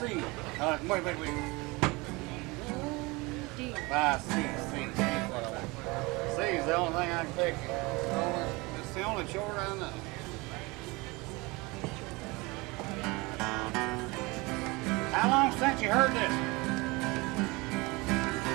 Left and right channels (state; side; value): quieter; left; 24.4 dB